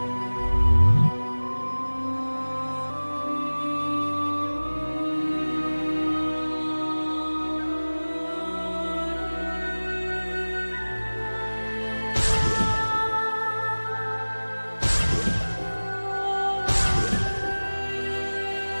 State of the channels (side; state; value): both; inverted; correlation -1.00